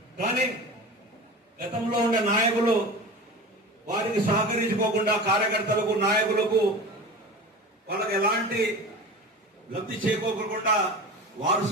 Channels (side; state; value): both; normal; correlation 0.33